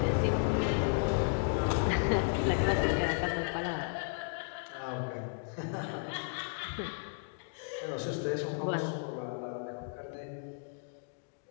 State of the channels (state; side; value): silent; right; digital silence